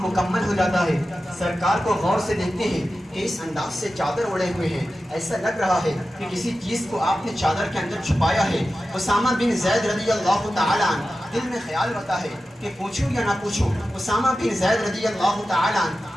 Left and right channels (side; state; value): both; normal; correlation 0.93